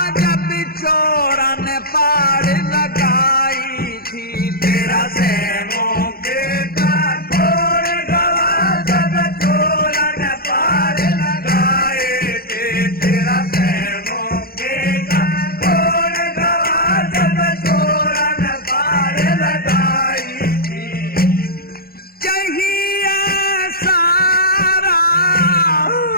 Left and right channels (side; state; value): right; late; 0.44 ms